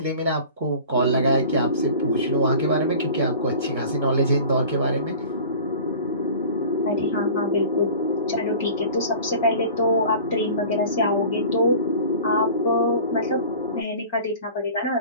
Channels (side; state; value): both; inverted; correlation -0.41